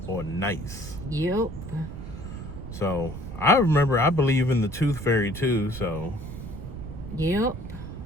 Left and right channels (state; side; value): noise; right; rumble, 10 dB below the sound